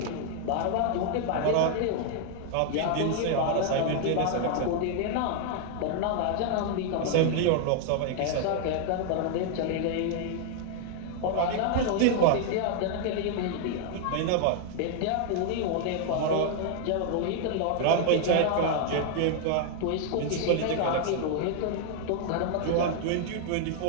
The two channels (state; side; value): different; both; correlation 0.00